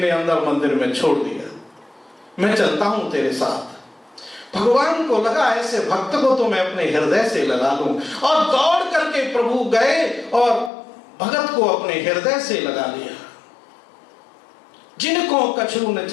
अंदर मंदिर में छोड़ दिया, मैं चलता हूं तेरे साथ। भगवान को लगा ऐसे भक्त को तो मैं अपने हृदय से लगा लूं, और दौड़ करके प्रभु गए और भगत को अपने हृदय से लगा लिया। जिनको कछु न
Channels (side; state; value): right; drops out; at 10.7 s